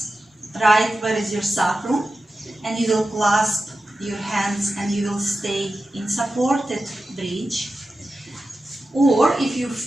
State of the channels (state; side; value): normal; both; correlation 0.93